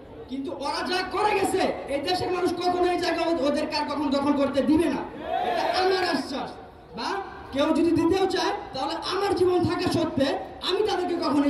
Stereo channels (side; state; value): both; identical; correlation 1.00